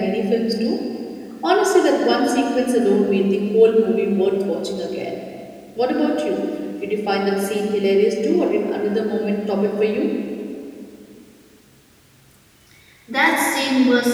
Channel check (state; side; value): identical; both; correlation 1.00